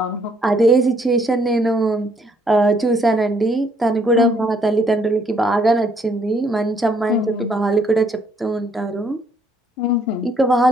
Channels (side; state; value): both; normal; correlation 0.67